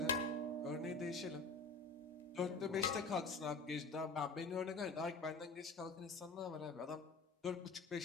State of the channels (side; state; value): right; quieter; 3.7 dB